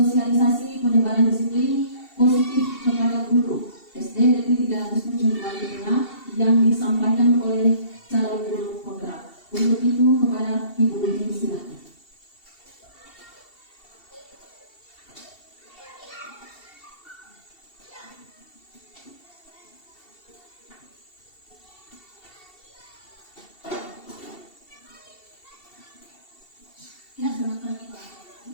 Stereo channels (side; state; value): right; late; 2.7 ms